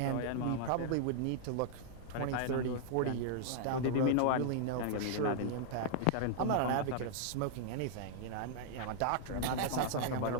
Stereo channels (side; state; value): both; different; correlation -0.01